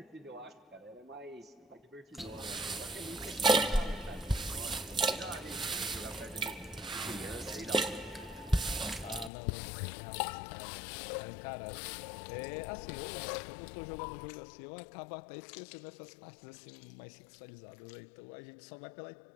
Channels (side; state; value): right; drops out; at 9.3 s